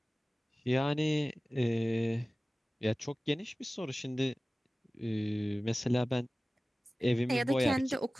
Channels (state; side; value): normal; both; correlation 0.97